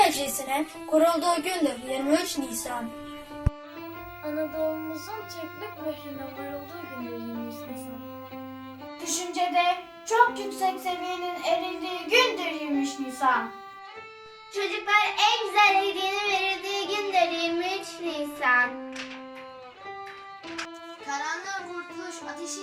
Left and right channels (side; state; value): both; identical; correlation 1.00